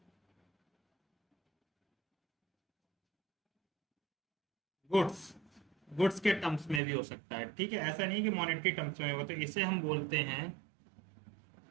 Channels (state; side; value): drops out; left; at 6.8 s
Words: गुड्स गुड्स के टर्म्स में भी हो सकता है, ठीक है। ऐसा नहीं कि मॉनेटरी टर्म्स में हो। तो इसे हम बोलते हैं